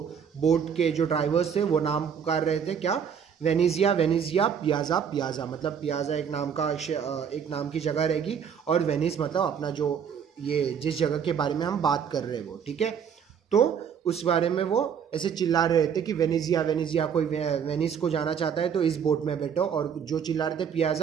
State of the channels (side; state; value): left; quieter; 7.5 dB